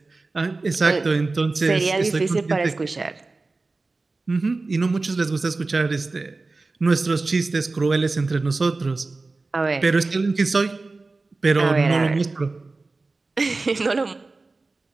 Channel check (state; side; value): quieter; left; 3.6 dB